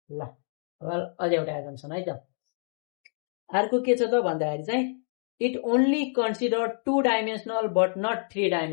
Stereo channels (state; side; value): silent; right; digital silence